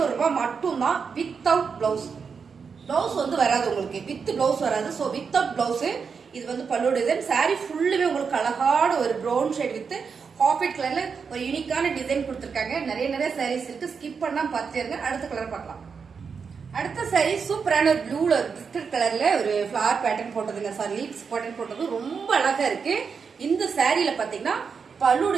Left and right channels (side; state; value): left; quieter; 5.8 dB